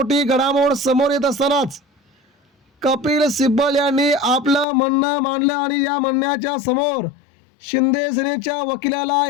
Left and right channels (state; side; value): drops out; right; at 4.7 s